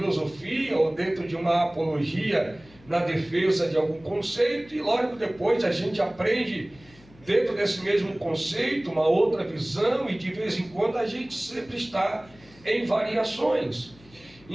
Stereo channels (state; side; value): noise; left; hum, 25 dB below the sound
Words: ou dentro de uma apologia na defesa de algum conceito, e logo depois a gente aprende dentro desse mesmo conceito uma outra visão, e de vez em quando a gente sempre está em variações.